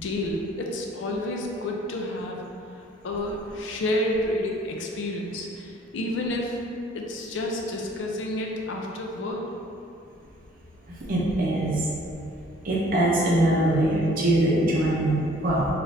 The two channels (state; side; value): normal; both; correlation 0.56